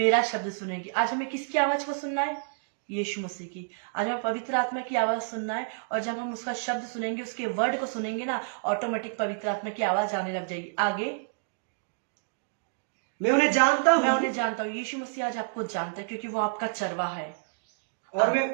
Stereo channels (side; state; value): left; silent; digital silence